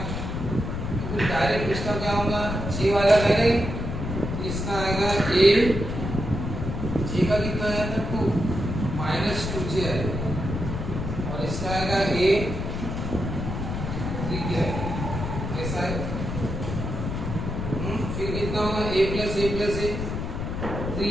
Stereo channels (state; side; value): noise; left; rumble, 4 dB below the sound